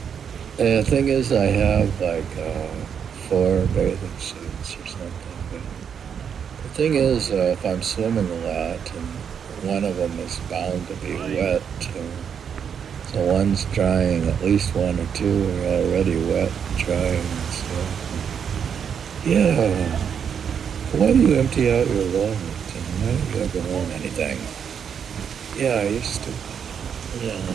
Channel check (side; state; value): left; quieter; 7.6 dB